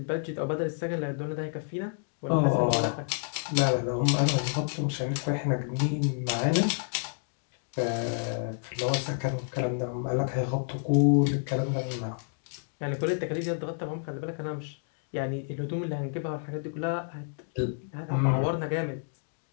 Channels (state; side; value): silent; right; digital silence